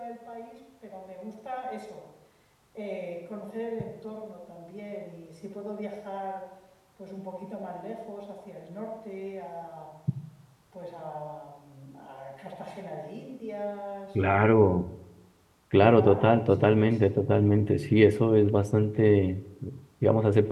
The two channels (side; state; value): both; identical; correlation 1.00